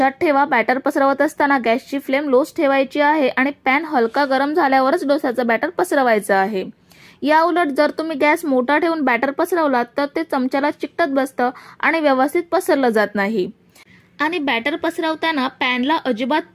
ठेवा, बॅटर पसरवत असताना गॅसची फ्लेम लोच ठेवायची आहे आणि पॅन हलका गरम झाल्यावरच डोस्याचं बॅटर पसरवायचं आहे। या उलट जर तुम्ही गॅस मोठा ठेवून बॅटर पसरवलात तर ते चमच्याला चिकटत बसतं आणि व्यवस्थित पसरलं जात नाही। आणि बॅटर पसरवताना पॅनला अजिबात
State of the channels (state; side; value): identical; both; correlation 1.00